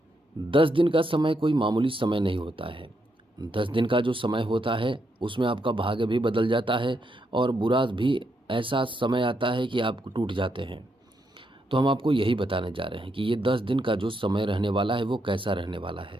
10 दिन का समय कोई मामूली समय नहीं होता है। 10 दिन का जो समय होता है उसमें आपका भाग्य भी बदल जाता है और बुरा भी ऐसा समय आता है कि आप टूट जाते हैं। तो हम आपको यही बताने जा रहे हैं कि ये 10 दिन का जो समय रहने वाला है वो कैसा रहने वाला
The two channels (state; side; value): normal; both; correlation 0.80